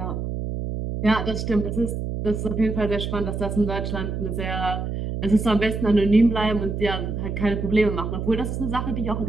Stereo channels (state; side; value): noise; right; hum, 4 dB below the sound